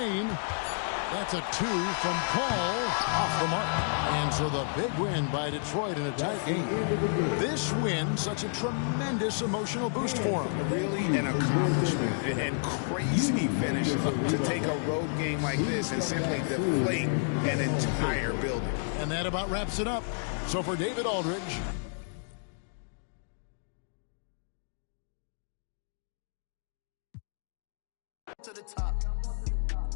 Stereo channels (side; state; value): right; silent; digital silence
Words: That's a 2 from Paul, off the mark. And so the big win by Detroit in a tight game. This win, such a tremendous emotional boost for them. Really an accomplishment and crazy finish to take a road game like this and simply deflate an entire building. And that about wraps it up. So for David Aldridge. To the top.